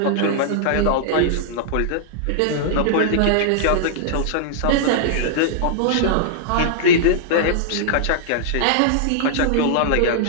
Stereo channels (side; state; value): both; different; correlation -0.01